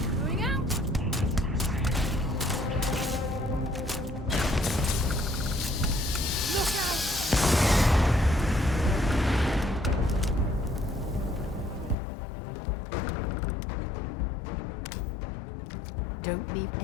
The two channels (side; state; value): right; drops out; at 12.0 s